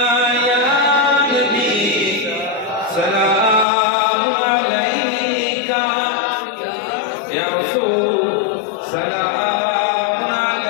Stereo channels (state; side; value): drops out; right; at 3.7 s